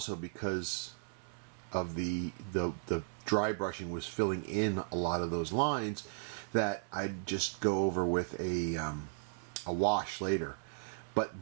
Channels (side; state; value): left; silent; 54 dB below the other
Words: because of the dry brushing was filling in a lot of those lines, that I'd just go over with a wash later.